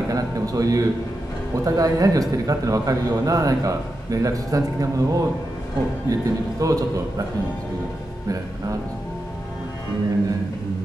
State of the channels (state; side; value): normal; both; correlation 0.88